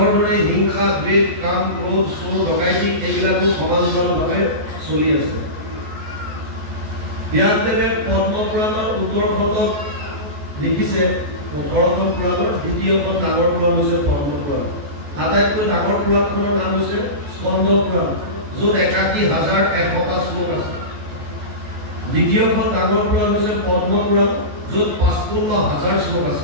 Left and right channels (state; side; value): late; left; 14 ms